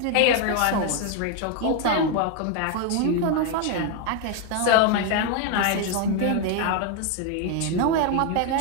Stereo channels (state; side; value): different; both; correlation 0.01